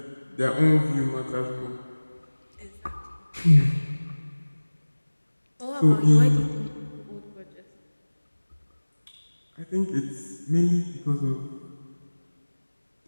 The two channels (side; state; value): both; inverted; correlation -1.00